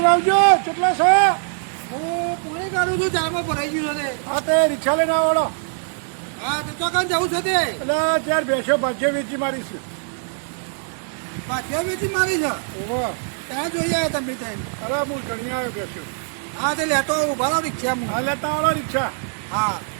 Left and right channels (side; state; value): left; silent; 64 dB below the other